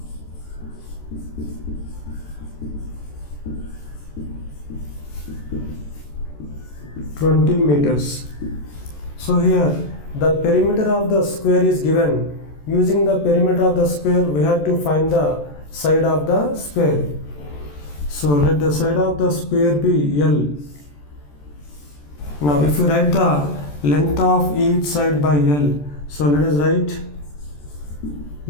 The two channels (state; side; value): late; right; 14 ms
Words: 20 meters? So here the perimeter of the square is given. Using the perimeter of the square, we have to find the side of the square. So let the side of the square be L. Now if you write the length of each side by L, so let us write,